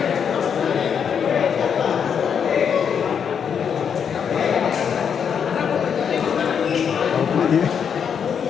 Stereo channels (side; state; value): right; quieter; 7.4 dB